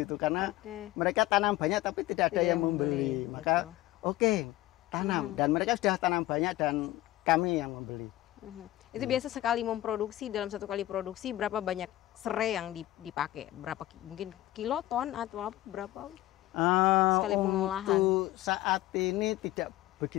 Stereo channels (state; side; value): quieter; right; 16.1 dB